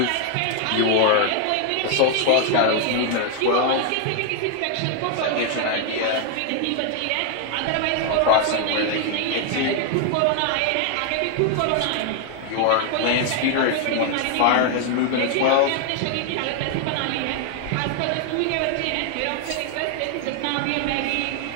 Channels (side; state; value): both; different; correlation 0.00